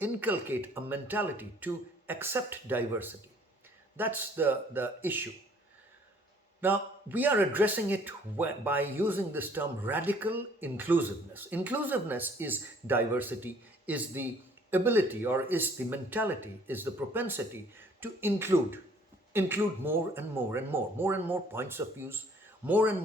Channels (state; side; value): normal; both; correlation 0.58